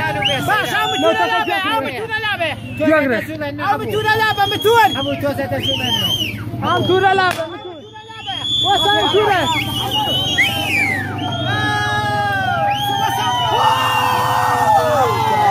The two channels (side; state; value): both; identical; correlation 1.00